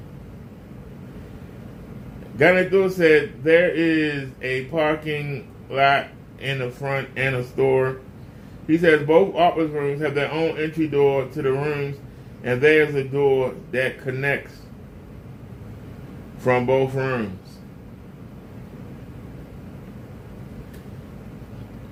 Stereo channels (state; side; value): identical; both; correlation 1.00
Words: Ganador said there is a parking lot in the front and a store. He says both office rooms have their own entry door to the rooms, and there's a door that connects from both rooms.